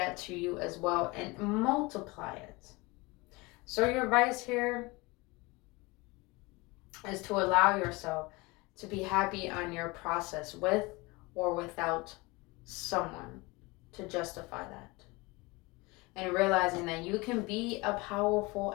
to you as well and multiply it. So your advice here is to allow yourself to be happy on your process with or without someone to justify that. And realizing that you can be a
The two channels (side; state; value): right; quieter; 23.9 dB